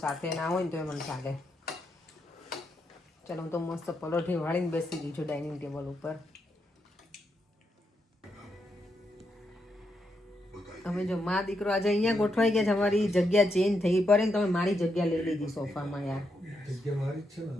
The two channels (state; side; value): normal; both; correlation 0.81